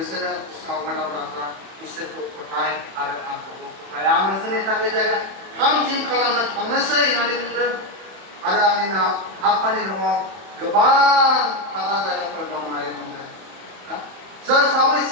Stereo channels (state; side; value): late; left; 31 ms